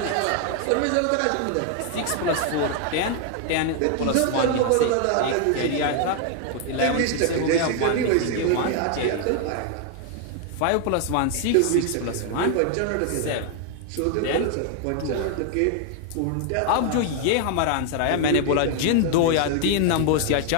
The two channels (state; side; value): different; both; correlation 0.00